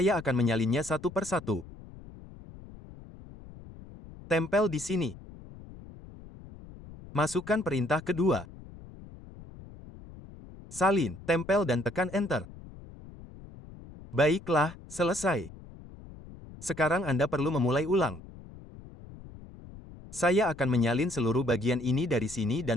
akan menyalinnya satu persatu. Tempel di sini. Masukkan perintah kedua. Salin, tempel dan tekan Enter. Baiklah, selesai. Sekarang Anda perlu memulai ulang. Saya akan menyalin seluruh bagian ini dari sini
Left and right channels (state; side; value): noise; left; rumble, 17 dB below the sound